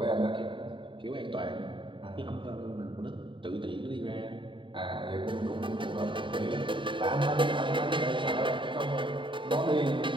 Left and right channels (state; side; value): late; left; 0.24 ms